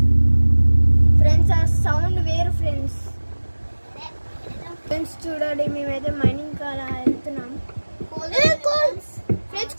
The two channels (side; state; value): both; inverted; correlation -1.00